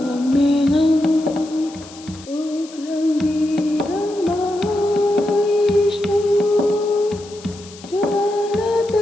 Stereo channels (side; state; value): left; noise; hiss, 20 dB below the sound